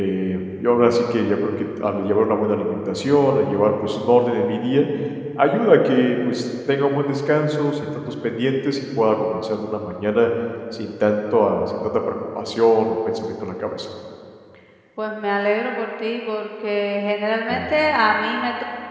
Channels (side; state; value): both; identical; correlation 1.00